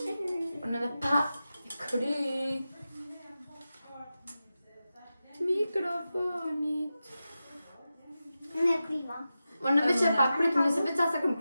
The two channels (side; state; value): both; inverted; correlation -0.93